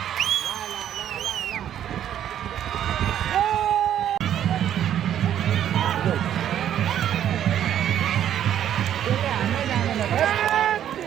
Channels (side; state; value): left; quieter; 10.5 dB